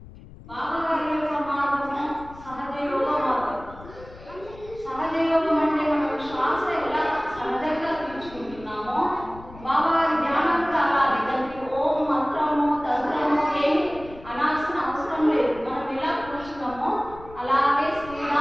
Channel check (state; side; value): noise; left; rumble, 18 dB below the sound